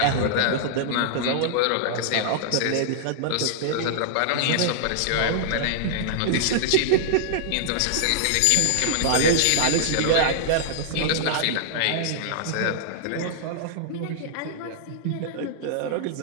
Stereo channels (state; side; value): different; both; correlation -0.01